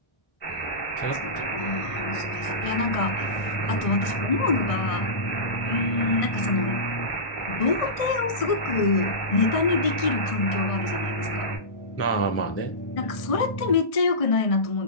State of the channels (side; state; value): right; late; 1.6 ms